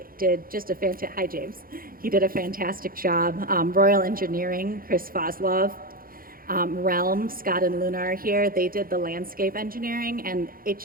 did just a fantastic, hi James. He did a fantastic job. Royal Engineering, Chris Foslov. Realm, Scott and Luna are here. They did the landscape engineering, and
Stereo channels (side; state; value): left; late; 0.42 ms